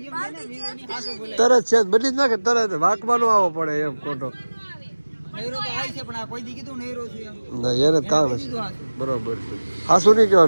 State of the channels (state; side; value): inverted; both; correlation -1.00